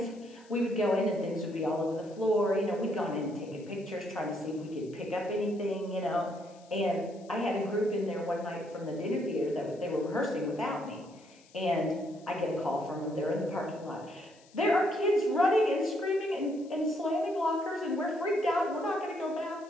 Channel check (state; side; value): noise; left; hiss, 27 dB below the sound